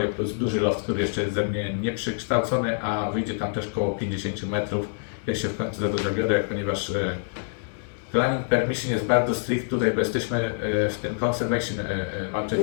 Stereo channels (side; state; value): right; silent; digital silence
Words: plus duży loft, który jeszcze jest ze mnie nieprzykształcony, a wyjdzie tam też około 50 metrów. Ja się w końcu za to zabiorę, ponieważ planning permission jest bardzo strict tutaj, bo jesteśmy w tym conservation, czyli